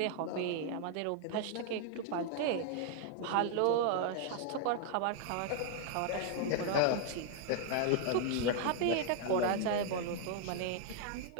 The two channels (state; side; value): different; both; correlation 0.00